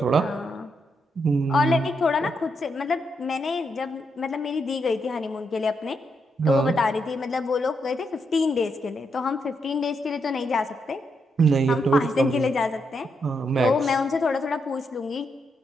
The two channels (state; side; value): normal; both; correlation 0.80